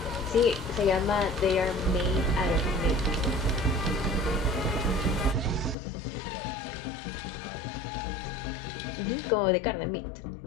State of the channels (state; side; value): drops out; right; at 5.8 s